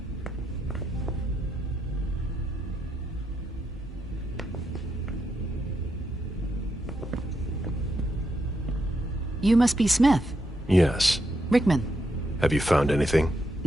You must be Smith. Yes. Rickman. Have you found anything?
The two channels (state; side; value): normal; both; correlation 0.82